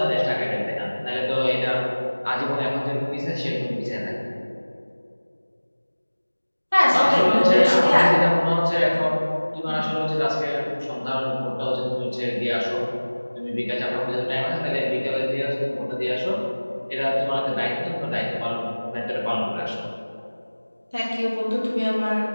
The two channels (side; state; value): both; inverted; correlation -1.00